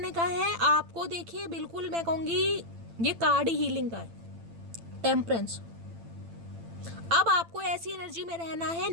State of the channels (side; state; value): left; late; 8.9 ms